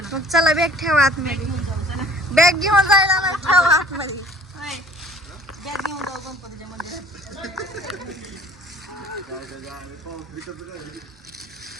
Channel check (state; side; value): normal; both; correlation 0.51